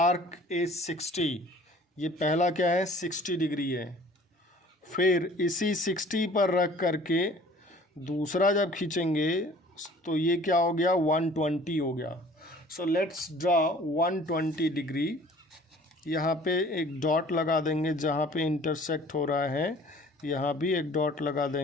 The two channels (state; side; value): normal; both; correlation 0.50